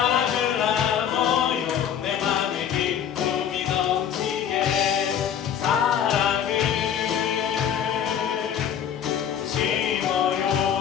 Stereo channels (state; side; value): quieter; right; 8.9 dB